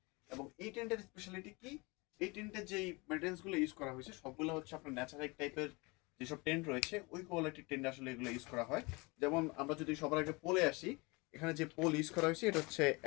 এবং এই টেন্টের স্পেশালিটি কি? এই টেন্টের যেই ম্যাটেরিয়ালসগুলো ইউজ করা হয়েছে সবগুলো হচ্ছে আপনার ন্যাচারাল টাইপের যেসব টেন্ট রয়েছে ওই কোয়ালিটির টেন্ট আসলে এগুলো ইউজ করা হয়। যেমন আমরা যদি সবার আগে পোলে আসি, এখানে যে পোল ইউজ করা হয়েছে এটা হচ্ছে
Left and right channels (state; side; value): quieter; right; 26.5 dB